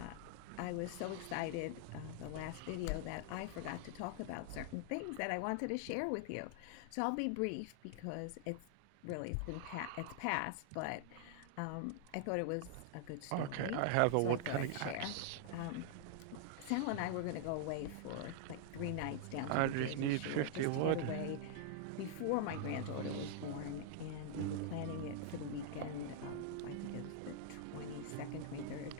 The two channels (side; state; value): both; different; correlation -0.01